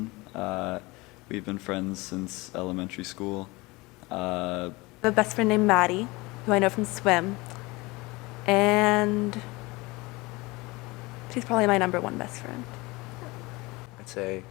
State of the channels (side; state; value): right; quieter; 23.2 dB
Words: We've been friends since elementary school. I have a best friend named Maddie, who I know from swim. And she's probably my number one best friend. I'd say